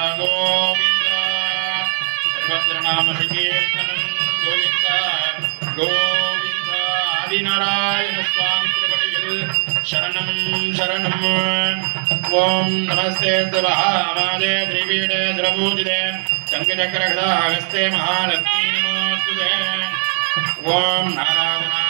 கோவிந்தா சர்வத்ரநாம சங்கீர்த்தனம் கோவிந்தா கோவிந்தா ஆதிநாராயண சுவாமி திருவடியில் சரணம் சரணம். ஓம் நமஸ்தே மகாமாதே திரிபீடே சுரபூஜிதே சங்கச்சக்கரகதாஹஸ்தே மகாலக்ஷ்மீ நமோஸ்துதே. ஓம்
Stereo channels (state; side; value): silent; left; digital silence